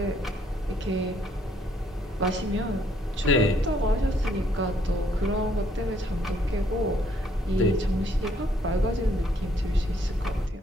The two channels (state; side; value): normal; both; correlation 0.68